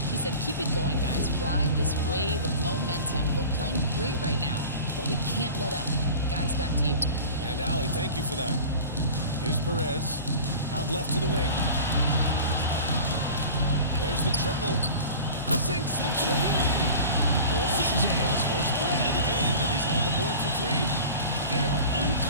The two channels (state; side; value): inverted; both; correlation -0.38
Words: He said, keep it going, guys. Ride this wave of momentum. We're playing great right now, but we can't let up. Guys, back to you. And Allie, thank you for that. Here's Perez. Out left to the wing. There's the triple. Sinks the three. Perez has got his first bucket of the game, and he's on the board for three. They are